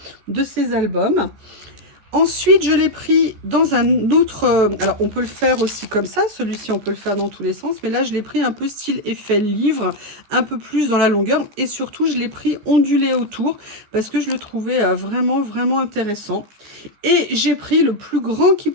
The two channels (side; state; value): left; late; 15 ms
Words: albums. Ensuite, je l'ai pris dans un autre... alors, on peut le faire aussi comme ça. Celui-ci, on peut le faire dans tous les sens. Mais là, je l'ai pris un peu style effet livre, un peu plus dans la longueur. Et surtout, je l'ai pris ondulé autour parce que je le trouvais vraiment intéressant. Et j'ai pris le plus grand qu'ils